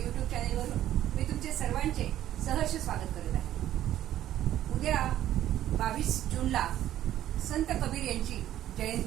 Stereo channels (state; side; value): quieter; left; 12.5 dB